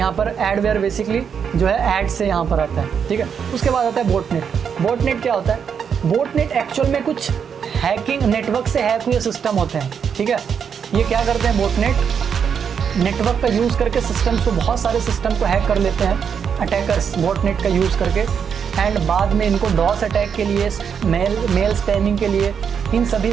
पर एडवेयर बेसिकली जो है ऐड से यहाँ पर आता है। ठीक है, उसके बाद आता है बोटनेट। बोटनेट क्या होता है? बोटनेट एक्चुअल में कुछ हैकिंग, नेटवर्क से हैक हुए सिस्टम होते हैं। ठीक है, ये क्या करते हैं बोटनेट, नेटवर्क का यूज़ करके सिस्टम्स को, बहुत सारे सिस्टम को हैक कर लेते हैं अटैकर्स बोटनेट का यूज़ करके, एंड बाद में इनको डॉस अटैक के लिए, मेल स्पैमिंग के लिए इन सभी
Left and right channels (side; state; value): left; quieter; 7.2 dB